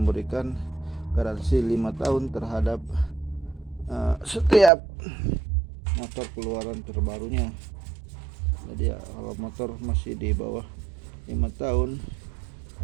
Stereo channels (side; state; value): left; drops out; at 4.7 s